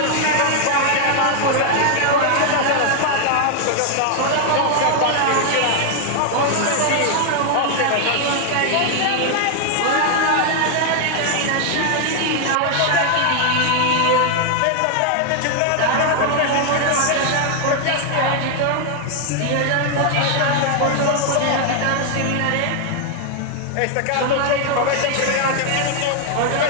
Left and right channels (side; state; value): both; different; correlation 0.00